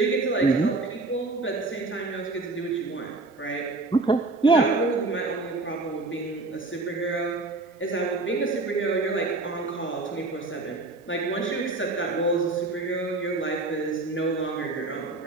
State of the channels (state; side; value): quieter; left; 3.3 dB